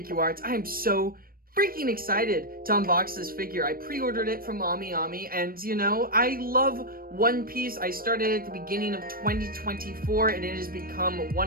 Arts. I am so freaking excited to unbox this figure. I pre-ordered it from Ami, and you know, I love One Piece. I started at the beginning of 2024, and it has become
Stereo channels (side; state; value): left; late; 0.42 ms